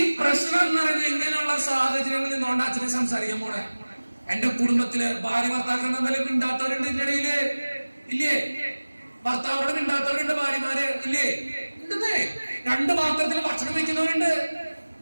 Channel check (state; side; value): inverted; both; correlation -1.00